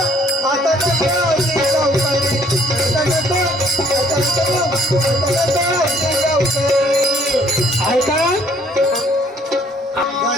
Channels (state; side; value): normal; both; correlation 0.61